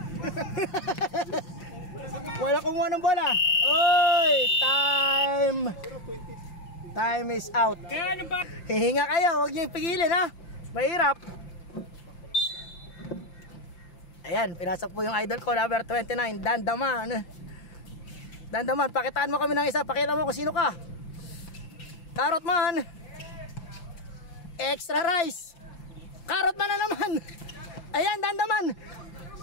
Wala kumuha ng bola. Uy! Time is out. Kaya ano ba? Hihinga kayo, huwag niyo ipigilin ha. Mahirap. Ayan, pinasok po yung idol ko, number 29, Dandaman. Pakitaan mo kami ng isa. Pakita mo kung sino ka. Carrot man. Extra rice. Carrot man na naman. Ayan, Dandaman.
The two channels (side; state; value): right; late; 5.8 ms